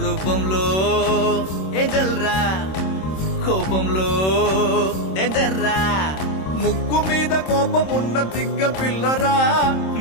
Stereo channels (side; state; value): right; late; 26 ms